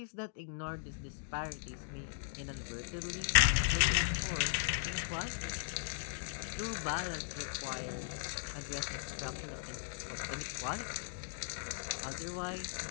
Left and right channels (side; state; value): right; silent; digital silence